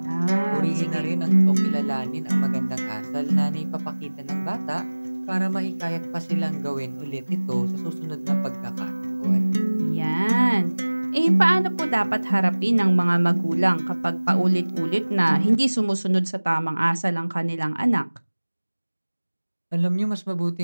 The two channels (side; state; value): both; inverted; correlation -1.00